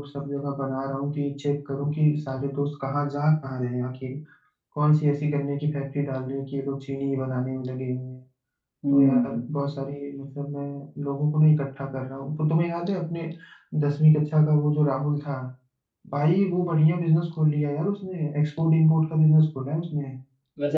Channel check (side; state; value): both; identical; correlation 1.00